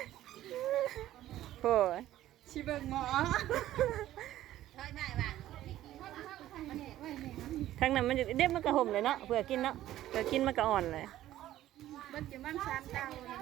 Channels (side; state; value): left; quieter; 13.7 dB